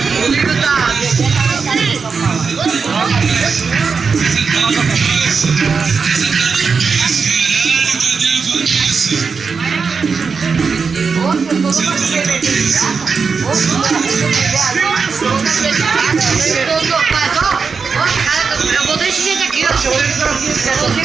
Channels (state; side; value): quieter; left; 5.3 dB